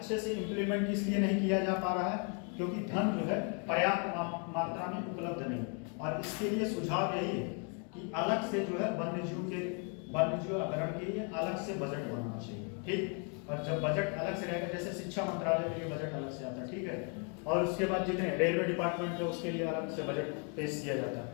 से इंप्लीमेंट इसलिए नहीं किया जा पा रहा है क्योंकि धन जो है पर्याप्त मात्रा में उपलब्ध नहीं। और इसके लिए सुझाव यही है कि अलग से जो है वन्यजीव अभ्यारण्य के लिए अलग से बजट बनना चाहिए। ठीक, और जब बजट अलग से रहेगा, जैसे शिक्षा मंत्रालय के लिए बजट अलग से आता है, ठीक है, और उसके बाद जितने रेलवे डिपार्टमेंट है उसके लिए अलग से बजट पेश किया जाता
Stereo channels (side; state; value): right; quieter; 38.6 dB